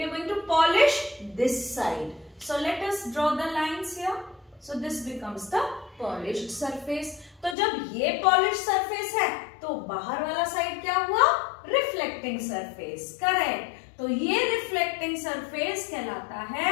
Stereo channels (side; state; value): right; drops out; at 7.6 s